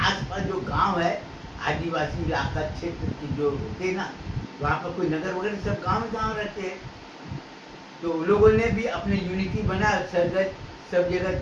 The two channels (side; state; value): both; identical; correlation 1.00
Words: जो गांव है, आदिवासी इलाका क्षेत्र के जो होते ना, वहाँ पर कोई नगर वगैरह सब गांव रहते हैं, तो उन लोगों ने भी अपने यूनिटी बना, सब जगह